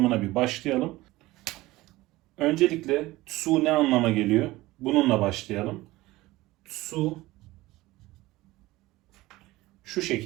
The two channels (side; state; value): left; quieter; 18.7 dB